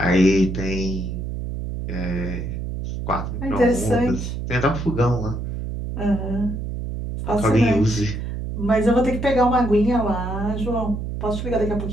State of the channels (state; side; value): noise; right; hum, 5 dB below the sound